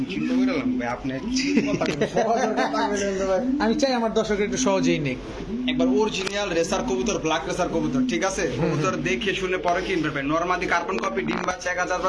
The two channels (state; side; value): identical; both; correlation 1.00